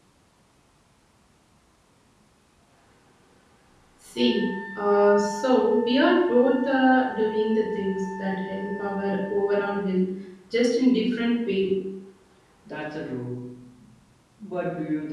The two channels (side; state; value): both; identical; correlation 1.00